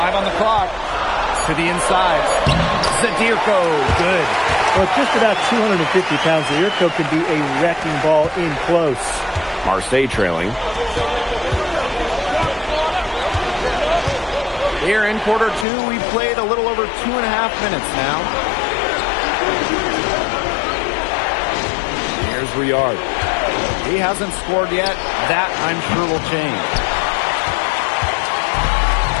on the clock. To the inside. Zadirko, good. Well, just about 250 pounds, Zadirko can be a wrecking ball in close. Marseille trailing. Here in quarter 2, we played a little over 2.5 minutes now. Here's Riyard. He hasn't scored yet. That, I'm sure, will change.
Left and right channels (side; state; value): right; drops out; at 15.7 s